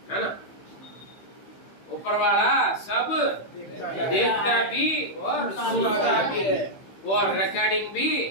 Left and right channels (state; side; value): late; right; 15 ms